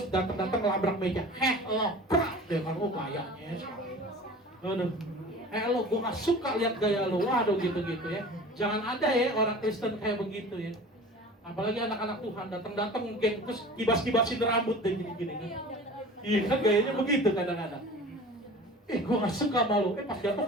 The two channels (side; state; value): both; normal; correlation 0.40